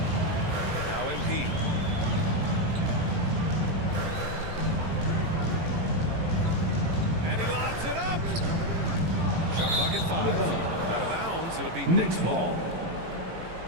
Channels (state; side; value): late; left; 18 ms